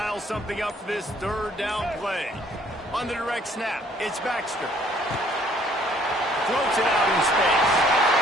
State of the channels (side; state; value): both; normal; correlation 0.61